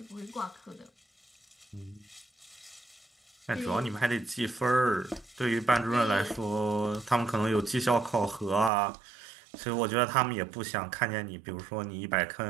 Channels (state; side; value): drops out; left; at 8.7 s